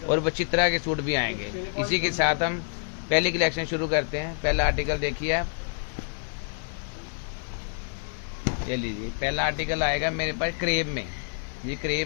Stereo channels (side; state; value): right; silent; 60 dB below the other